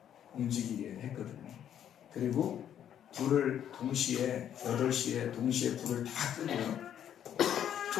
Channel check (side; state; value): right; quieter; 9.9 dB